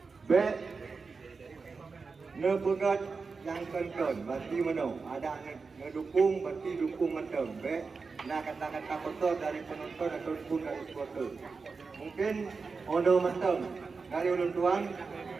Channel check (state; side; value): quieter; left; 4.6 dB